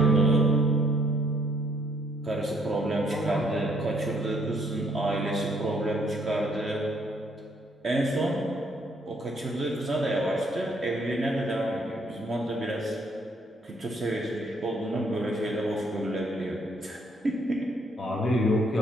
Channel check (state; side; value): normal; both; correlation 0.68